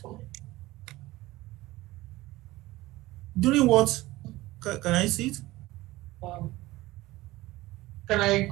During what? Can I see it? Can I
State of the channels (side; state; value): left; quieter; 18.5 dB